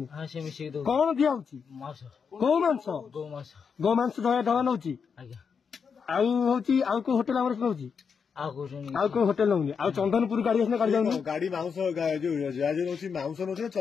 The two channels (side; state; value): right; quieter; 6.2 dB